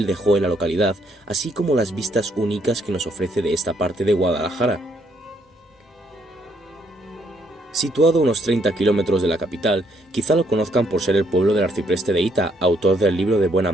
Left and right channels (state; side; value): normal; both; correlation 0.71